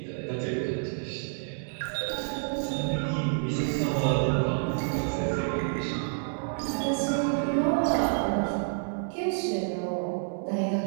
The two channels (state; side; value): silent; left; digital silence